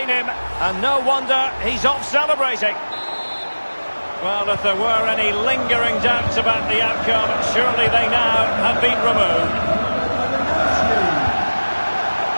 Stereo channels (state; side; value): inverted; both; correlation -1.00